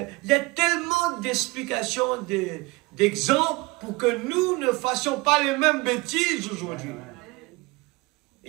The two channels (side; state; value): left; quieter; 24.0 dB